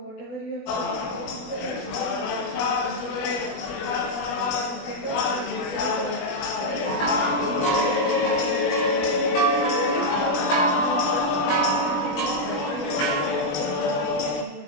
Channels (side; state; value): right; late; 21 ms